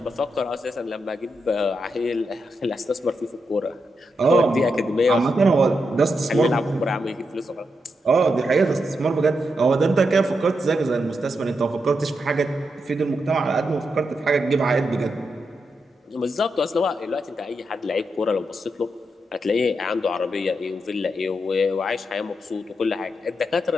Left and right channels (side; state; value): both; normal; correlation 0.84